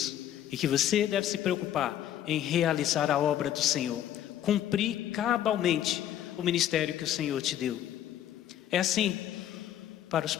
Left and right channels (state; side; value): quieter; right; 11.3 dB